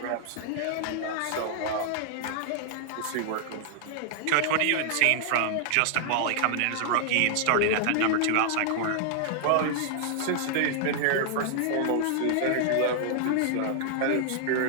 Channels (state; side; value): different; both; correlation -0.01